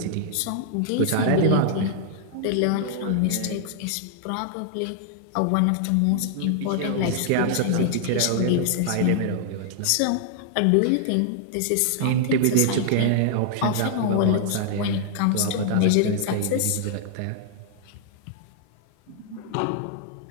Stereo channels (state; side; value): different; both; correlation -0.01